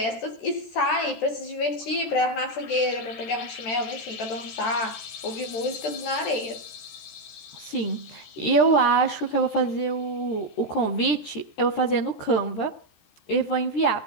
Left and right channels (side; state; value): right; late; 13 ms